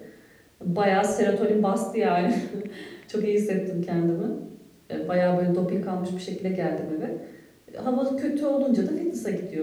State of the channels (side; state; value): both; identical; correlation 1.00